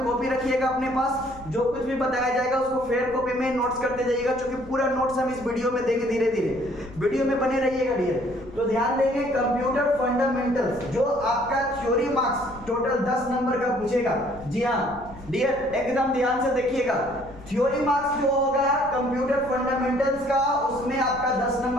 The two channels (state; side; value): noise; left; rumble, 18 dB below the sound